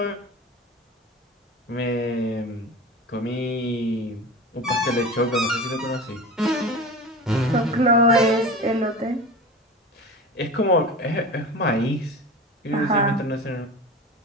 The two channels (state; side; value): normal; both; correlation 0.32